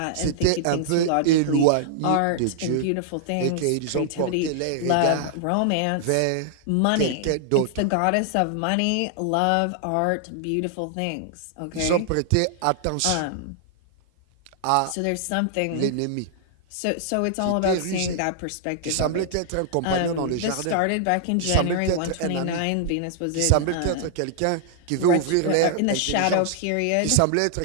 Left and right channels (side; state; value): both; different; correlation -0.01